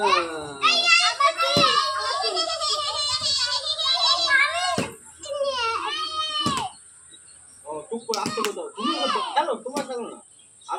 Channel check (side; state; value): both; identical; correlation 1.00